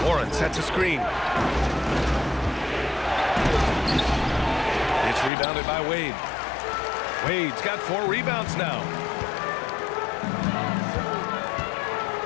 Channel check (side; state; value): right; drops out; at 5.3 s